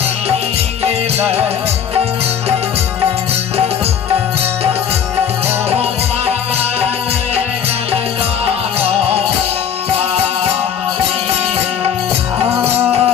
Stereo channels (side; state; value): right; quieter; 8.3 dB